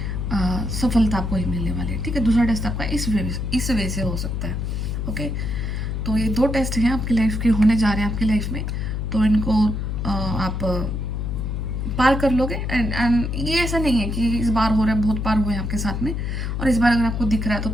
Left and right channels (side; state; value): left; noise; hum, 2 dB below the sound